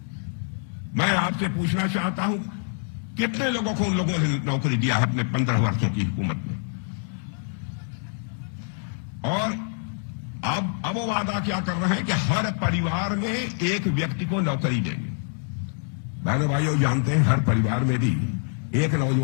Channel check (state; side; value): silent; right; 61 dB below the other